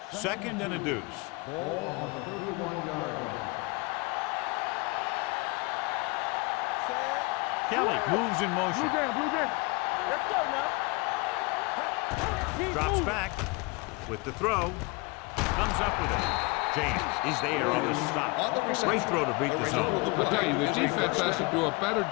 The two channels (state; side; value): quieter; right; 27.3 dB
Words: Second and a deuce. Ball on the 31-yard line. Kelly moves in motion. Blue jam. Let's go now. Go make the play. Drops back with the throw. Comes up with it. James is there on the stop. Great throw to beat the zone. I'll tell you, the defense has to do a better